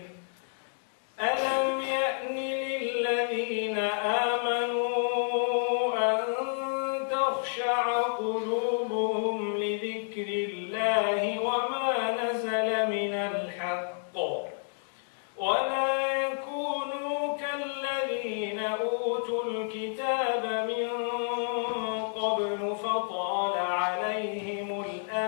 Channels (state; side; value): silent; right; digital silence